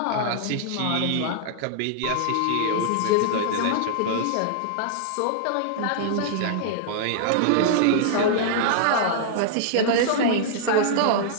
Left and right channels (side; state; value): both; different; correlation -0.01